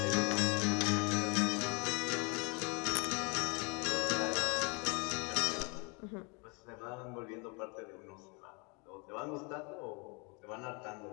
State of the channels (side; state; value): right; quieter; 32.0 dB